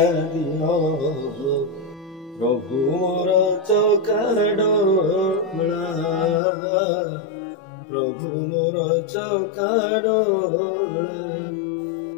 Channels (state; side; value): drops out; right; at 6.4 s